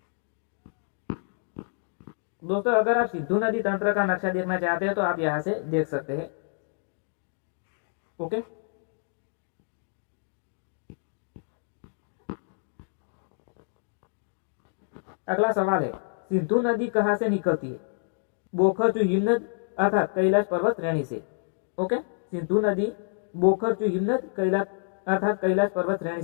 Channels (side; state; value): right; silent; digital silence